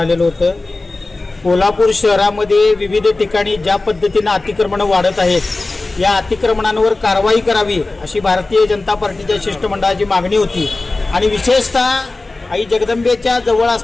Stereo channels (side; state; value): right; quieter; 3.2 dB